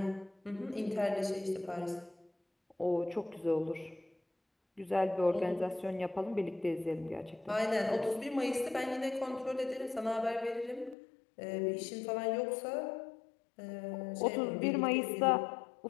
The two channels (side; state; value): right; drops out; at 11.0 s